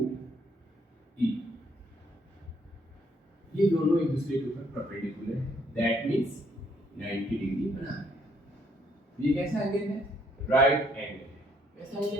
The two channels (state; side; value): normal; both; correlation 0.68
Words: ई, ये दोनों एक दूसरे के ऊपर परपेंडिकुलर है, दैट मींस 90 डिग्री बना रहे हैं। ये कैसा एंगल है? Right angle. कैसा